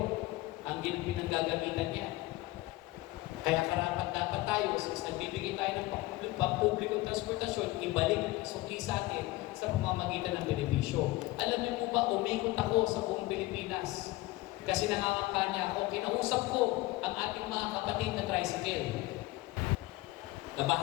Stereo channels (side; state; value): right; quieter; 19.4 dB